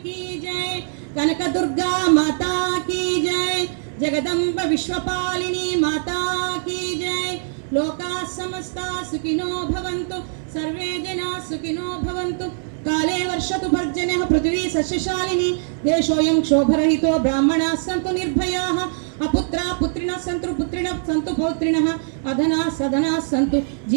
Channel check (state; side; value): silent; left; digital silence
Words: की जय. కనక దుర్గా మాతా की जय. జగదంబ విశ్వపాలిని మాతా की जय. లోకా సమస్తా సుఖినో భవంతు, సర్వే జనా సుఖినో భవంతు. కాలే వర్షతు పర్జన్యః పృథివీ సస్యశాలిని. దేశోయం క్షోభరహితో బ్రాహ్మణాः సంతు నిర్భయాः. అపుత్రా పుత్రిణः సంతు పుత్రిణः సంతు పౌత్రిణः. అధనా సధనాः సంతు